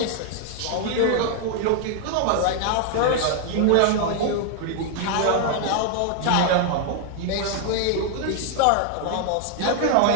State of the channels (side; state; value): both; different; correlation 0.00